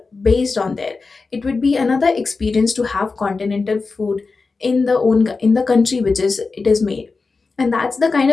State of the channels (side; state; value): right; quieter; 4.2 dB